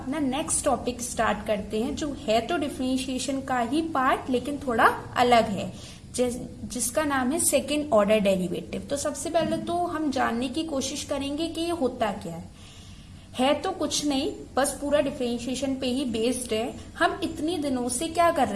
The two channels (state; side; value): identical; both; correlation 1.00